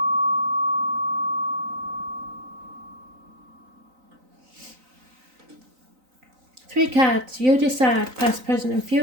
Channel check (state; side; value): late; left; 3.9 ms